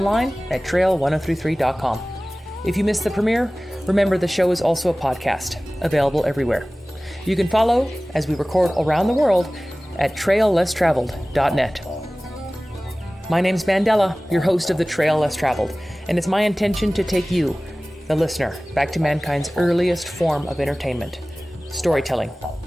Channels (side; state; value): both; normal; correlation 0.98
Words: at trail1033.com. If you missed the premiere, remember the show is also a podcast, available everywhere. You can follow as we record around the world at traillesstraveled.net. My name's Mandela, your host of the Trail Less Traveled, and it's my intention to take you, the listener, back to mankind's earliest form of entertainment, storytelling.